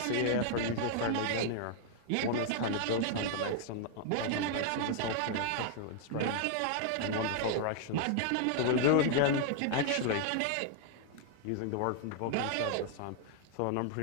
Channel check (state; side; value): different; both; correlation 0.00